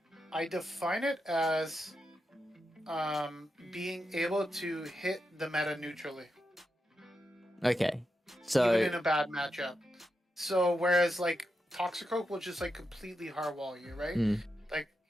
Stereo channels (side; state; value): both; normal; correlation 0.87